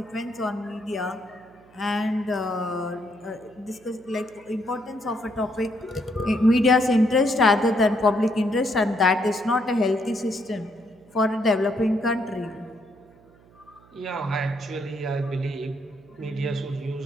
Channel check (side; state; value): right; noise; hum, 27 dB below the sound